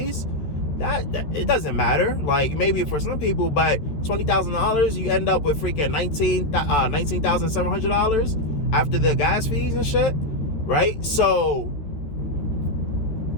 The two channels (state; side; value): late; right; 13 ms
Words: That it doesn't matter. Like, maybe for some people, but $20,000, you end up with freaking $19,700 after the gas fees and shit, right? So